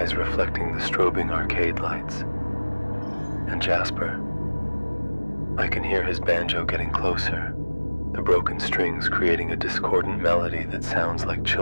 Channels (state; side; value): inverted; both; correlation -1.00